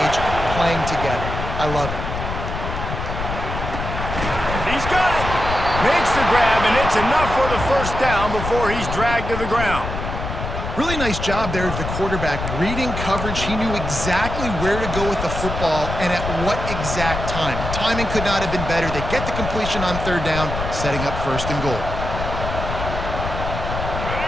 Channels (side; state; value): left; noise; rumble, 5 dB below the sound